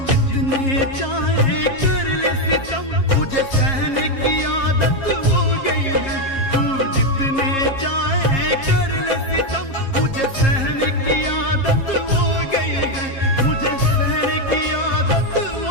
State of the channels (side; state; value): right; late; 7.4 ms